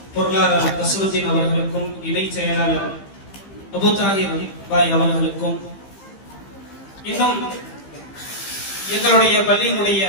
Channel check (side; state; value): right; late; 15 ms